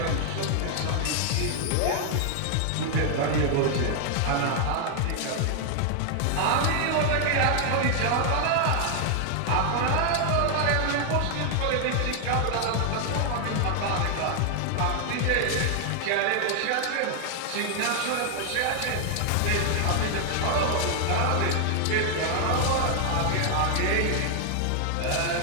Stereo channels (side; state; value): both; different; correlation 0.00